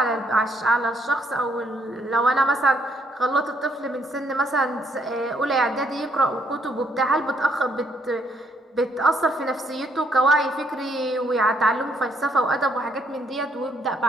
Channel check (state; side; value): normal; both; correlation 0.70